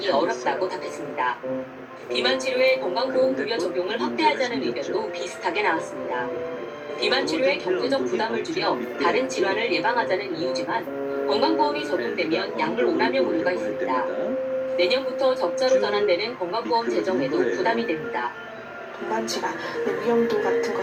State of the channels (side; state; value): both; identical; correlation 1.00